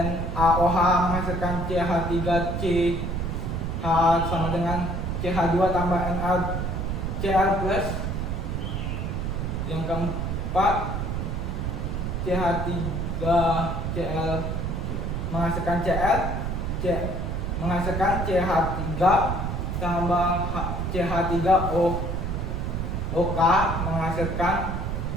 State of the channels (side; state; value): right; noise; rumble, 2 dB below the sound